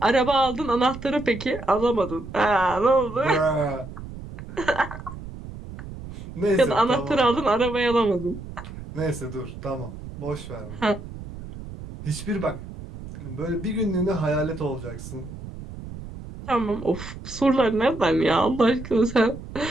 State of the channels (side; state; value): right; noise; rumble, 12 dB below the sound